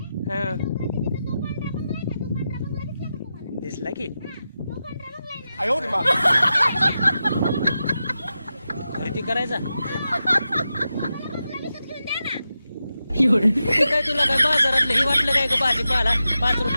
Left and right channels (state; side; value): inverted; both; correlation -0.90